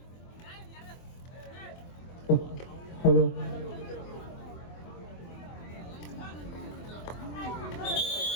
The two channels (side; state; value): right; late; 24 ms